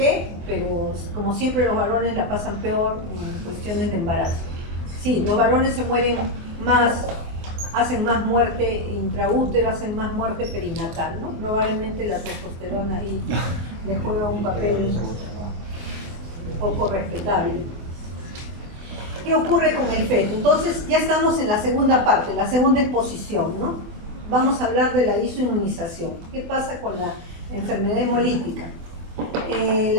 pero como siempre los varones la pasan peor en cuestiones de embarazo. Sí, los varones se mueren más, hacen más muerte intraútero, hacen más muerte perinatal, ¿no? Probablemente la testosterona ahí les juega un papel un poco respetable. ¿Qué ocurre con el feto? Entonces ya estamos en la segunda parte, la segunda exposición, ¿no? Vamos a hablar de la isoinmunización. ¿Qué pasa con la enfermedad hemolítica?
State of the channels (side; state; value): left; late; 24 ms